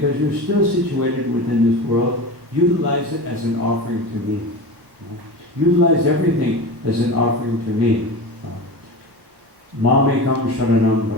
you're still situated within this world, utilize it as an offering to me. Utilize everything as an offering to me. Mamekam sharanam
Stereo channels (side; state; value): left; late; 1.2 ms